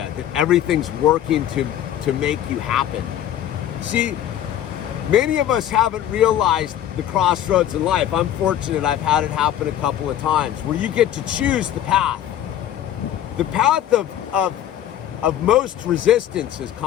that everything's working to make you happen. See, many of us haven't realized the crossroads in life. I'm fortunate I've had it happen a couple of times, where you get to choose the path. The path of most resistance is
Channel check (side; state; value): right; quieter; 11.3 dB